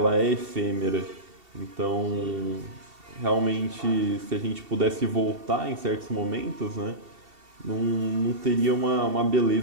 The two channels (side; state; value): left; late; 2.7 ms